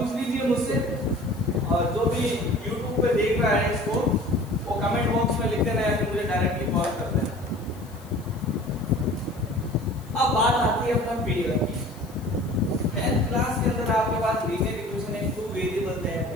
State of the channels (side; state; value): left; noise; hiss, 24 dB below the sound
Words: लीजिए मुझसे, और जो भी YouTube पे देख रहा है इसको वो कमेंट बॉक्स में लिख देना है, फिर मुझे डायरेक्टली कॉल कर देना। अब बात आती है अपना पेयर की। 10th क्लास के अंदर आपके पास लीनियर इक्वेशन है, 2 वेरिएबल है,